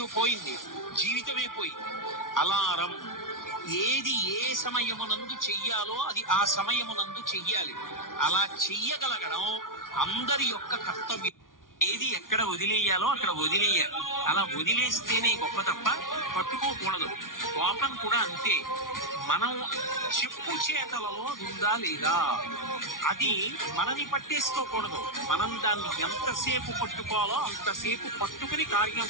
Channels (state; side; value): late; right; 0.89 ms